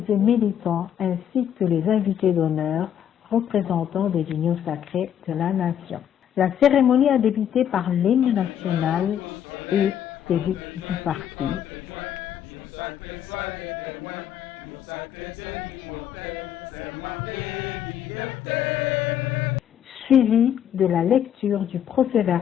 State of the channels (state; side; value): quieter; right; 9.6 dB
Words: et militants ainsi que les invités d'honneur représentants des unions sacrées de la nation. La cérémonie a débuté par l'hymne national et celui du parti. Suivi de la lecture du